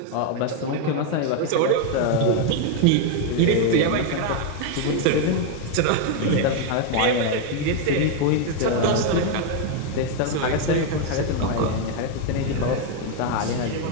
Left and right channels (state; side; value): different; both; correlation 0.01